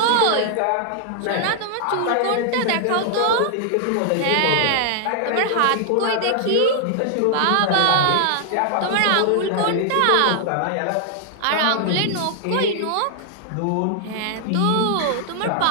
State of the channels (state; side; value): different; both; correlation -0.01